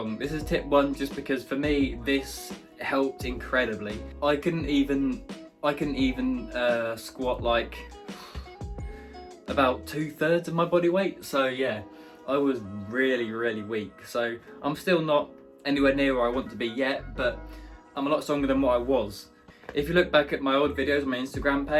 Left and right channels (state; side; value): identical; both; correlation 1.00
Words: This is tip 1 just because for me this helped incredibly. I couldn't even squat like about 2/3 of my body weight. So yeah, I was really weak. So I'm still not anywhere near where I want to be yet, but I'm a lot stronger than what I was. If you look back at my old videos on my Instagram